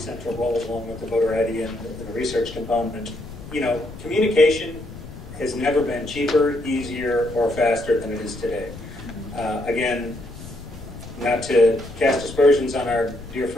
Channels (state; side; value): noise; left; rumble, 14 dB below the sound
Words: roles, along with the voter ID and the research component. You know, communication has never been cheaper, easier, or faster than it is today. Again, not to cast aspersions on our dear